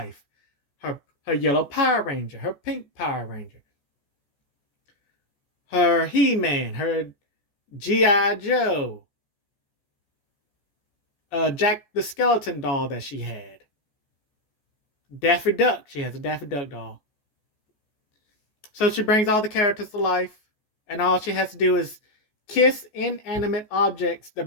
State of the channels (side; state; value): right; late; 14 ms